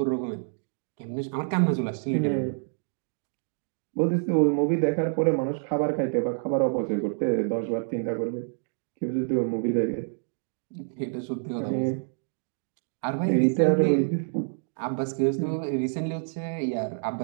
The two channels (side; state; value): left; silent; digital silence